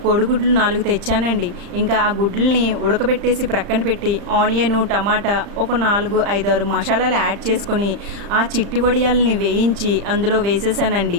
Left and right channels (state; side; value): late; left; 35 ms